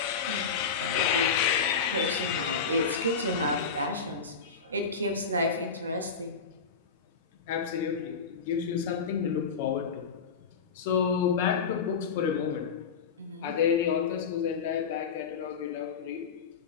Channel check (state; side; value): quieter; right; 5.7 dB